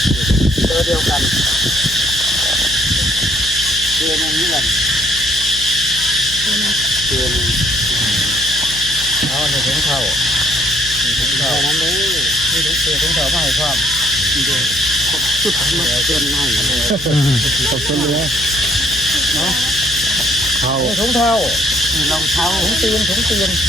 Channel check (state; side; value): noise; left; hum, 14 dB below the sound